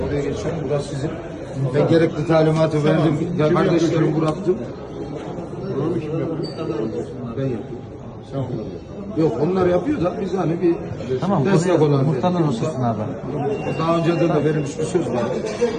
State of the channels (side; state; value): both; identical; correlation 1.00